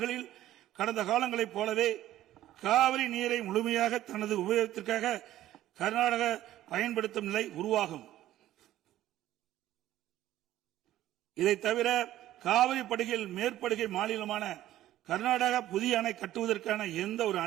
கடந்த காலங்களைப் போலவே காவிரி நீரை முழுமையாக தனது உபயோகத்திற்காக கர்நாடக பயன்படுத்தும் நிலை உருவாகும். இதை தவிர காவிரி படுகையில் மேற்படுகை மாநிலமான கர்நாடகா புதிய அணை கட்டுவதற்கான எந்த ஒரு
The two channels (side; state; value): left; quieter; 13.7 dB